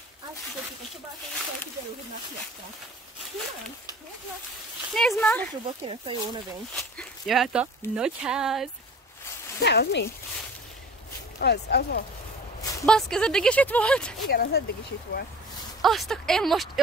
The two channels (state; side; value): normal; both; correlation 0.43